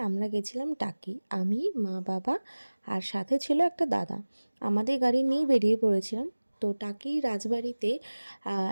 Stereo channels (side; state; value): both; inverted; correlation -1.00